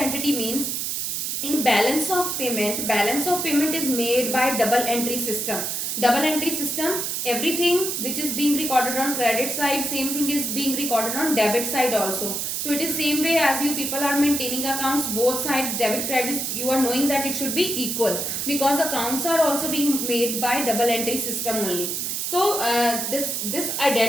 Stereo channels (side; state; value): right; noise; hiss, 2 dB below the sound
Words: means in balance of payment is made by double entry system. Double entry system, everything which is being recorded on credit side, same thing is being recorded on debit side also. So it is same way as you people are maintaining accounts, both sides debit credits, you are knowing that it should be equal, because accounts are also being made by double entry system only. So this